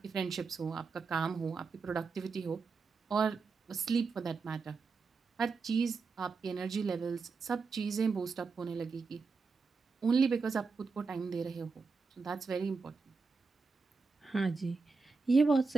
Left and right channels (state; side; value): quieter; left; 4.6 dB